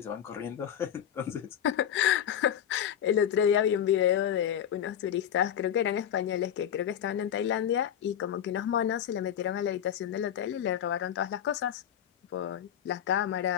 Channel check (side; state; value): right; quieter; 9.7 dB